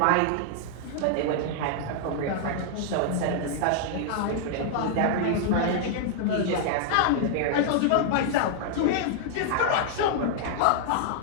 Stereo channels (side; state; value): both; different; correlation -0.01